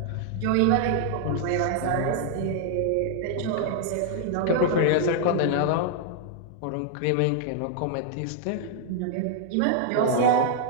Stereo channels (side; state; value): both; different; correlation -0.01